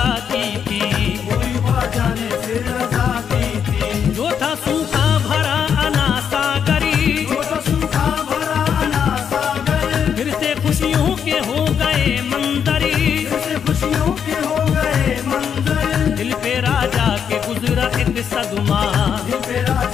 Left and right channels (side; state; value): right; quieter; 7.7 dB